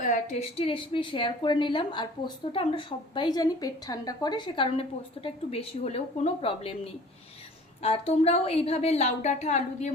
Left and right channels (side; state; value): both; normal; correlation 0.47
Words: টেস্টি রেসিপি শেয়ার করে নিলাম। আর পোস্তটা আমরা সবাই জানি পেট ঠান্ডা করে, সে কারণে পোস্তটা একটু বেশি হলেও কোনো প্রবলেম নেই। আর তোমরাও এইভাবে লাউ ডাঁটা আলু দিয়ে